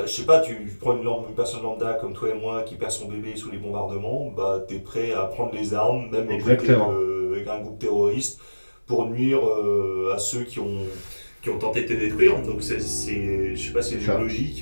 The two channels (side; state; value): both; inverted; correlation -1.00